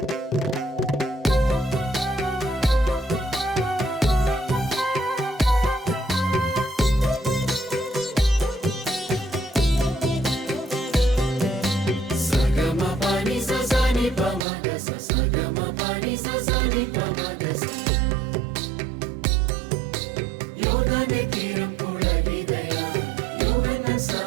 യോർദാന്റെ തീരം പുളകിതയായി യോഹന്നാൻ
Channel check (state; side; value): drops out; left; at 14.5 s